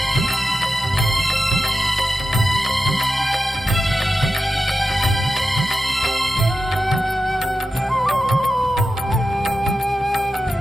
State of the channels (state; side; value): normal; both; correlation 0.91